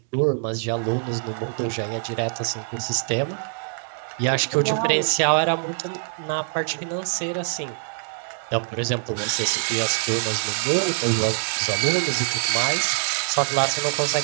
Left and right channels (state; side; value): silent; left; digital silence